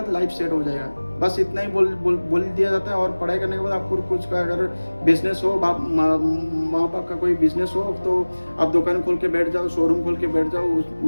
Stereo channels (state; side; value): inverted; both; correlation -1.00